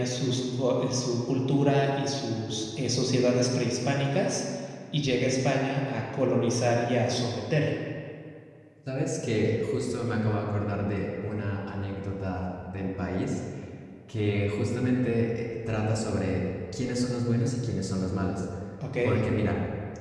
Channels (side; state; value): both; identical; correlation 1.00